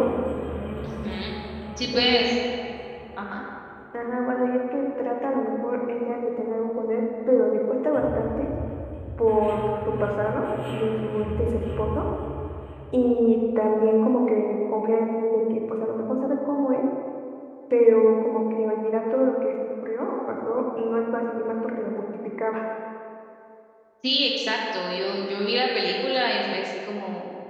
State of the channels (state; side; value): identical; both; correlation 1.00